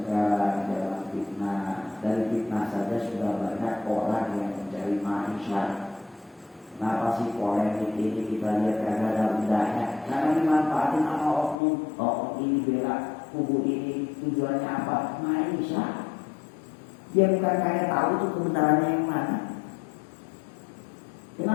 zaman fitnah. Dari fitnah saja sudah banyak orang yang mencari maisha. Kenapa sih polemik ini kita lihat karena ada udahnya? Karena dimanfaatin sama oknum ini bela kubu ini, tujuannya apa? Maisha. Dia bukan kayak tahu tuh kebenarannya yang mana.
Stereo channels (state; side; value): drops out; right; at 11.6 s